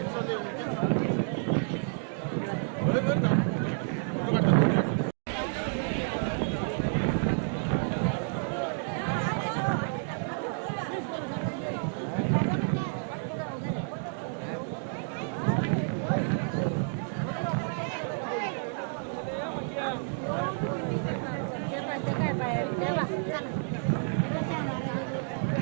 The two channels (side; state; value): left; silent; 58 dB below the other